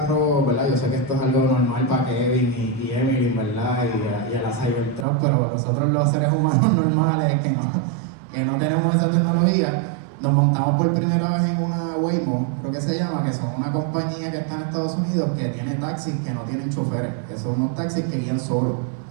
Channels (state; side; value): drops out; left; at 5.1 s